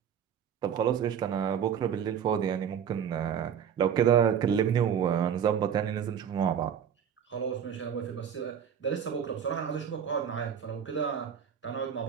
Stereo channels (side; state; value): left; quieter; 8.3 dB